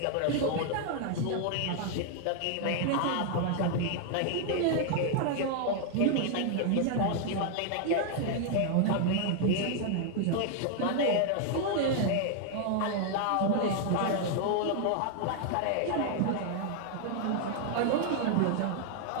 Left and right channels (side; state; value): both; different; correlation 0.00